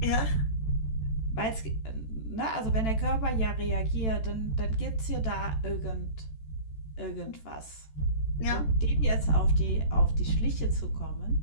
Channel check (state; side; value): late; right; 14 ms